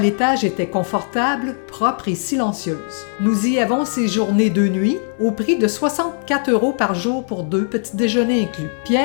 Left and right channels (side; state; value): right; silent; 64 dB below the other